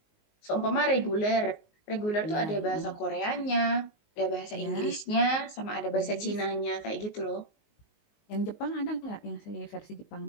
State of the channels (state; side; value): late; right; 19 ms